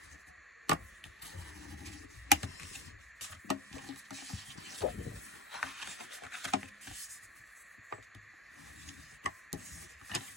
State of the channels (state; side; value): normal; both; correlation 0.16